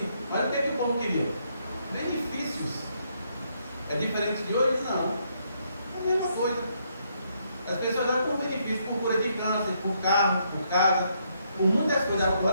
Mas o que é que o povo queria? Benefícios. É diferente de hoje? Não. É a mesma coisa. As pessoas dão por benefício, por cura de câncer, por carro, por casa, por muitas coisas.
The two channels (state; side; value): inverted; both; correlation -0.74